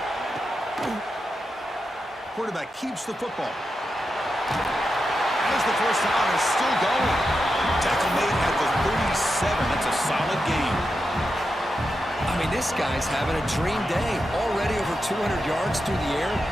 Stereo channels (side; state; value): both; normal; correlation 0.88